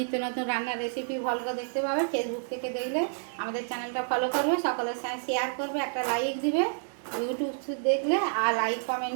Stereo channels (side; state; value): left; silent; digital silence